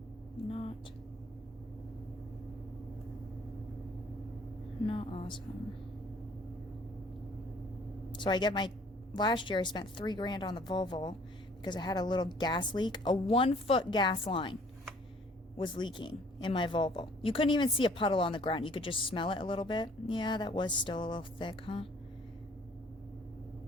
Not awesome. So I get my, last year I spent $3,000 on the Volvo because I had a little gas leak. A 1-foot gas line was leaking in my Volvo. You couldn't even see a puddle on the ground. You could just smell it a little bit. Yeah, that was still a little thick, huh?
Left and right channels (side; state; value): both; normal; correlation 0.57